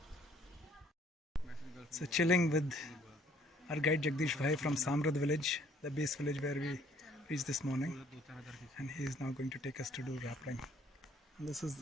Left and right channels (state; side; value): normal; both; correlation 0.61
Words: So chilling with our guide Jagdish Bhai from Samrad village, the base village where we reached this morning, and he is now going to take us to do rappling. And this is